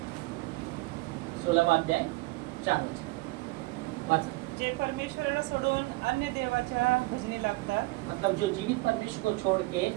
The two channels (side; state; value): left; quieter; 22.7 dB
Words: 16वां अध्याय 4 वचन। जे परमेश्वराला सोडून अन्य देवाच्या भजनी लागतात, मतलब जो जीवित परमेश्वर को छोड़ के